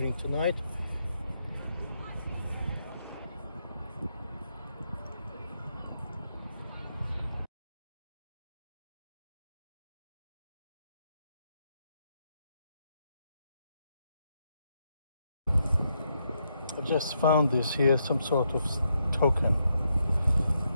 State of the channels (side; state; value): both; inverted; correlation -0.80